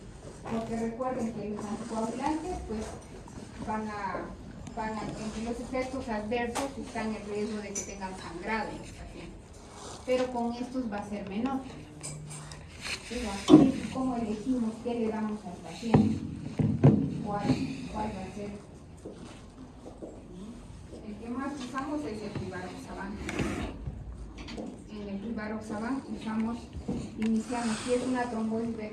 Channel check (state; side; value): identical; both; correlation 1.00